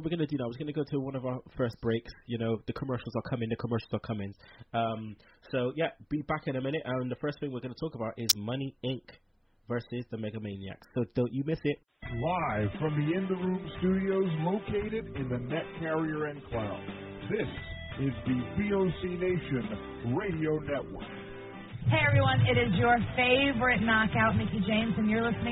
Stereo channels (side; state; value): both; identical; correlation 1.00